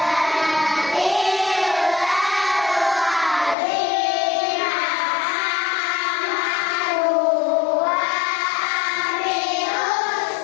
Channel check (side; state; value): right; drops out; at 3.6 s